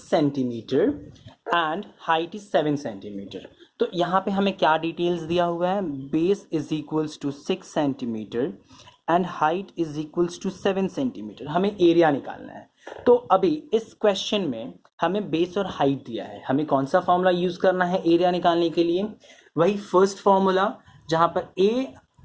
centimetre and height is 7 centimetre. तो यहाँ पे हमें क्या डिटेल्स दिया हुआ है, base is equals to 6 centimetre and height is equals to 7 centimetre. हमें एरिया निकालना है। तो अभी इस क्वेश्चन में हमें बेस और हाइट दिया है, हमें कौन सा फॉर्मूला यूज करना है एरिया निकालने के लिए, वही फर्स्ट फॉर्मूला जहां पर ए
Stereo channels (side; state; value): both; identical; correlation 1.00